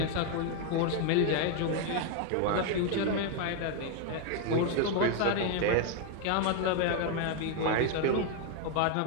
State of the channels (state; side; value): different; both; correlation 0.01